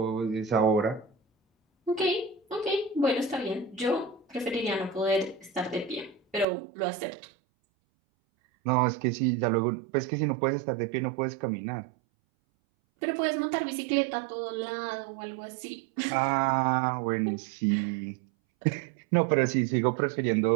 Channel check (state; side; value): drops out; left; at 6.5 s